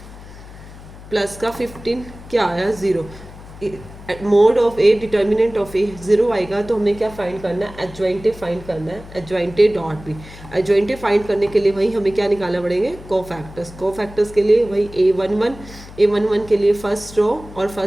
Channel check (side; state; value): left; noise; hum, 17 dB below the sound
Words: प्लस का 15 क्या आया 0। Mod of A determinant of A 0 आएगा तो हमें क्या फाइंड करना है, एडजॉइंटे फाइंड करना है, एडजॉइंटे डॉट बी। एडजॉइंटे फाइंड करने के लिए वही हमें क्या निकालना पड़ेंगे, कोफैक्टर्स। कोफैक्टर्स के लिए वही a11 के लिए फर्स्ट रो और